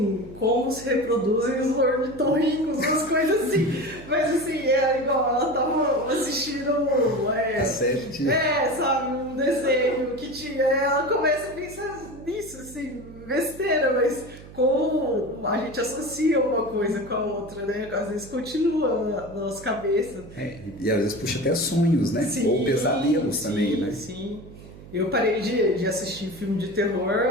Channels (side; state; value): right; noise; hum, 17 dB below the sound